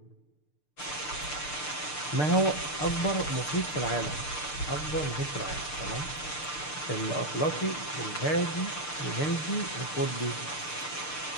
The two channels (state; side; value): late; right; 6.7 ms